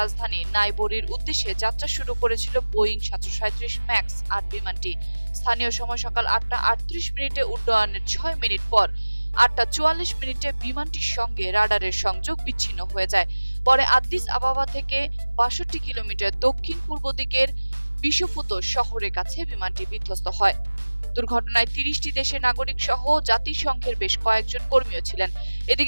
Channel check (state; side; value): inverted; both; correlation -1.00